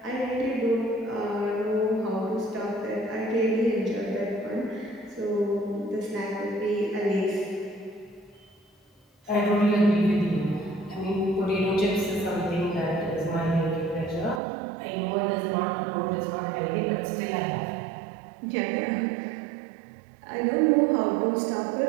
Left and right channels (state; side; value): drops out; left; at 14.4 s